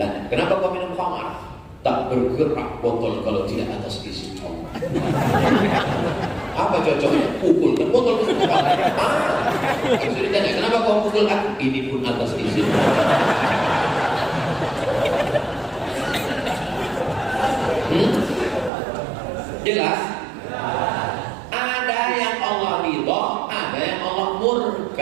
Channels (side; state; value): left; drops out; at 18.7 s